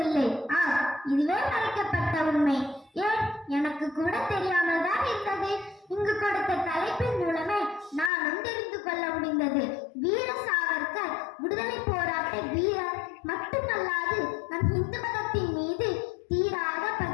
இதுவே மறைக்கப்பட்ட உண்மை. ஏன், எனக்கு கூட தெரியாமல் தான் இருந்தது. இங்கு கொடுத்த தலைப்பின் மூலமே நானும் தெரிந்து கொள்ள முடிந்தது. வீர சாவர்கர் விடுதலை போராட்ட வீரர் மட்டுமல்லாது நம் இந்து மதத்தின் மீது தீராத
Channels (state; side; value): drops out; right; at 8.1 s